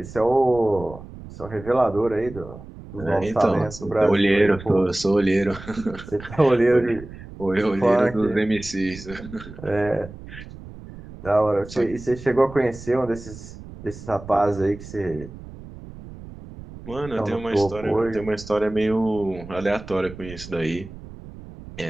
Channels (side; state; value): right; noise; rumble, 15 dB below the sound